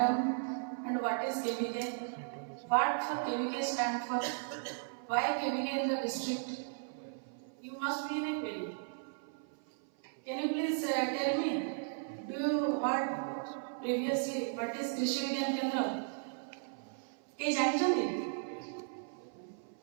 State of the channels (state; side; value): silent; left; 54 dB below the other